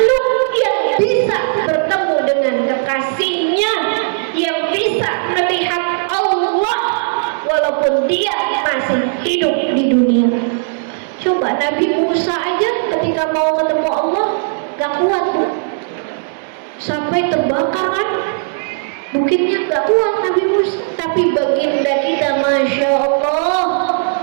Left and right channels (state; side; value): silent; left; digital silence